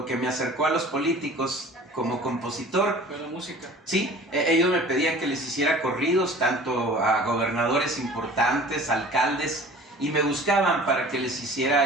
que me acercó a los políticos como compositor fue la música. Sí, ellos me pedían que les hiciera corridos, tanto a gobernadores importantes, alcaldes, y me buscaban para que les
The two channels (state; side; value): normal; both; correlation 0.45